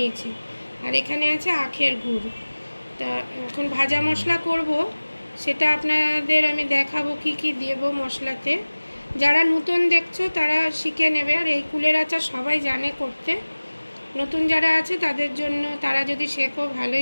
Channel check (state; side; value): inverted; both; correlation -1.00